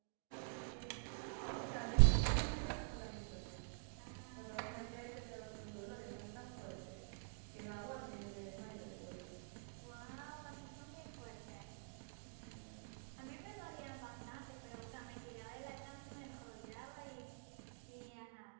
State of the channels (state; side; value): silent; left; digital silence